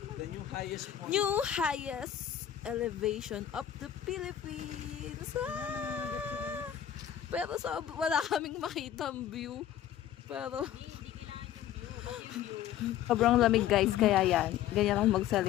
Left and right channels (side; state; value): right; quieter; 10.8 dB